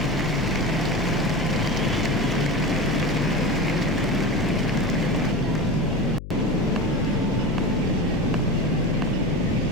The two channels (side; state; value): left; noise; hum, 11 dB below the sound